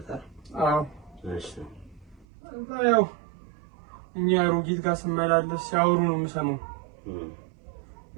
አይደል? አዎ። እሺ ያው እኛ አሮጊት ጋር ስመላለስ ሲያወሩ ነው የምሰማው።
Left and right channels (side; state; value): left; drops out; at 2.2 s